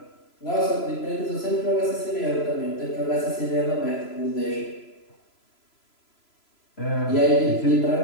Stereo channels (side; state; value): right; late; 3.0 ms